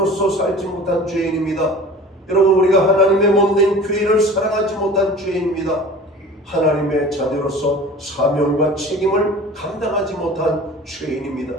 살지 못한 죄인입니다. 여러분, 우리가 하나님의 몸된 교회를 사랑하지 못한 죄인입니다. 하나님의 자녀로서 사명과 책임을 감당하지 못한 죄인입니다.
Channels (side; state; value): both; normal; correlation 0.41